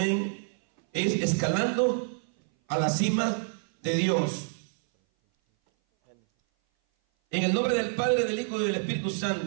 es escalando a la cima de Dios. En el nombre del Padre, del Hijo y del Espíritu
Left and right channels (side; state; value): left; silent; 58 dB below the other